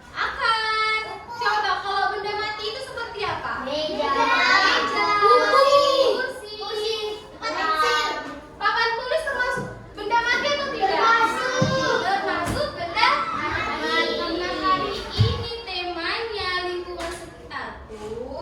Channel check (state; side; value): identical; both; correlation 1.00